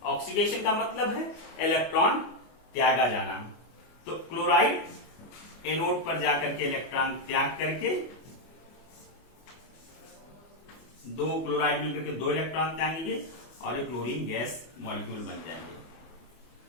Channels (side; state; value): right; late; 25 ms